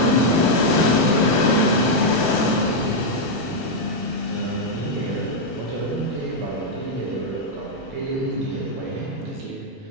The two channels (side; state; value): both; normal; correlation -0.02